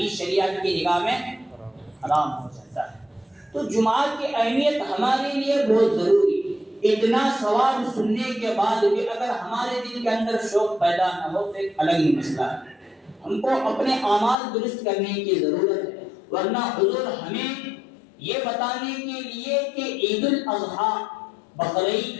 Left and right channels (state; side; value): drops out; right; at 14.4 s